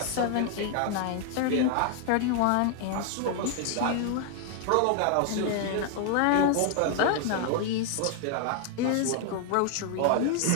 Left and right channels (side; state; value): both; different; correlation 0.00